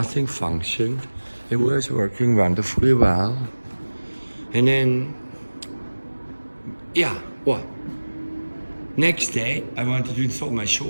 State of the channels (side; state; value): both; inverted; correlation -1.00